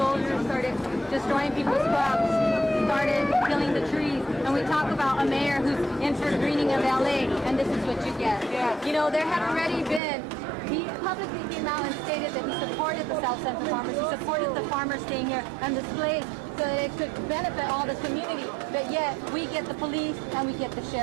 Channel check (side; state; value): left; drops out; at 10.0 s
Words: started destroying people's crops, started killing the trees, and we talk about a mayor who's in for greening of LA, and this is what you get. Yeah. You know, there had already been, he publicly came out and stated that he supported the South Central farmers, he supported the farmers staying here and displayed so that it could benefit all the community, but yet we get the police and we get the